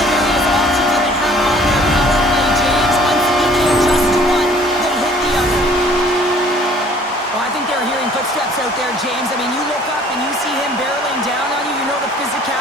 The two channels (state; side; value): normal; both; correlation 0.55